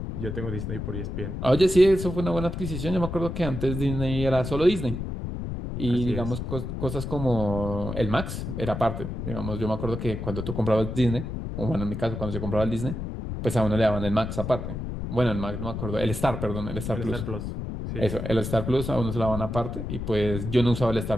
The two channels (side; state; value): left; noise; rumble, 5 dB below the sound